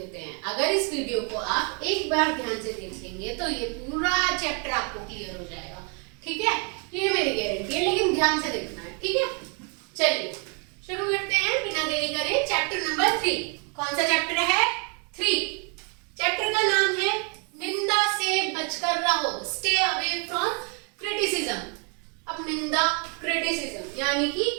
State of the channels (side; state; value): left; quieter; 36.7 dB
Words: हैं, अगर इस वीडियो को आप एक बार ध्यान से देख लेंगे तो ये पूरा चैप्टर आपको क्लियर हो जाएगा। ठीक है, ये मेरी गारंटी है, लेकिन ध्यान से देखना है। ठीक है, चलिए शुरू करते हैं बिना देरी करे। Chapter number 3। कौन सा चैप्टर है? 3। चैप्टर का नाम है निंदा से बचकर रहो, स्टे अवे फ्रॉम क्रिटिसिज्म। अब निंदा, क्रिटिसिज्म यानी कि